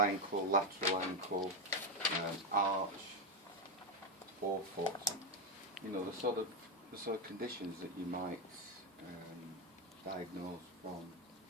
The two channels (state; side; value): normal; both; correlation 0.06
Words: lateral ankle, arch, forefoot. You know, the sort of conditions that you might diagnose from